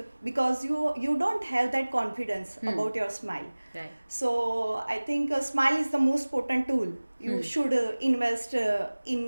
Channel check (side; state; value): both; inverted; correlation -1.00